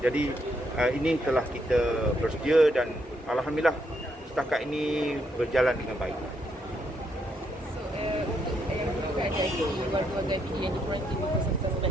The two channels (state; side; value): normal; both; correlation 0.76